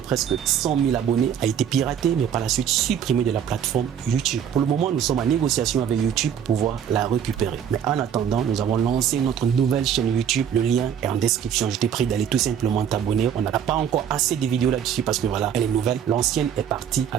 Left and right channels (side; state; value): left; quieter; 8.6 dB